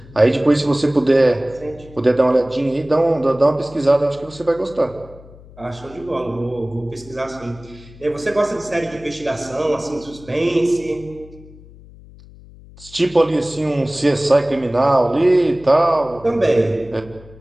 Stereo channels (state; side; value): noise; left; hum, 21 dB below the sound